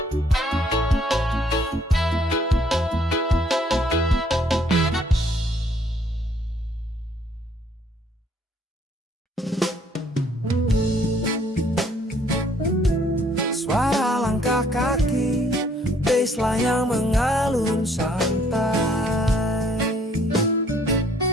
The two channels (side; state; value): both; normal; correlation 0.64